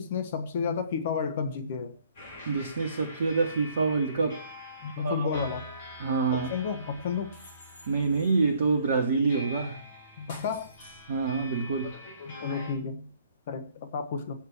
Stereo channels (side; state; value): both; inverted; correlation -0.61